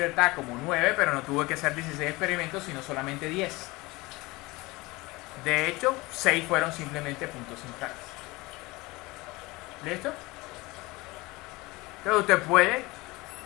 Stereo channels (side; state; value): right; quieter; 22.3 dB